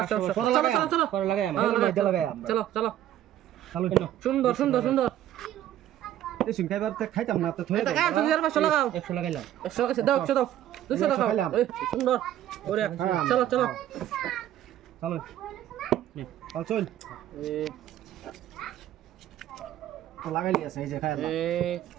চলো চলো চলো পরে লাগাই আমরা চলো চলো চালু সুন্দর সুন্দর সুন্দর এই সিং খাইবার তে খাইতাম না তো থই এটা কাজ তুমি আর 500 লাগাও 100 লাগাইলাম 100 লাগাইছে দাও 100 দাও 200 লাগাও এই সুন্দর ওরে চলো চলো চালু চল চল তো লাগাইলি আছে এই যে খাইলাম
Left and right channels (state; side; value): quieter; left; 12.1 dB